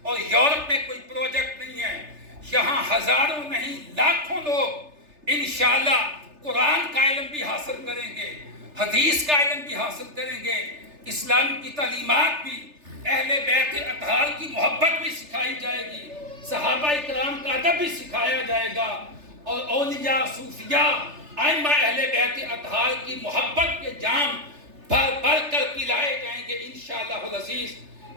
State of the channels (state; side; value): late; left; 3.3 ms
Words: اور یورپ میں کوئی پروجیکٹ نہیں ہے. یہاں ہزاروں نہیں لاکھوں لوگ انشاءاللہ قرآن کا علم بھی حاصل کریں گے، حدیث کا علم بھی حاصل کریں گے، اسلام کی تعلیمات بھی، اہل بیت اطہار کی محبت بھی سکھائی جائے گی، صحابہ اکرام کا ادب بھی سکھایا جائے گا، اور اولیاء، صوفیاء، ائمہ اہل بیت اطہار کی محبت کے جام بھر بھر کر پلائے جائیں گے انشاءاللہ العزیز.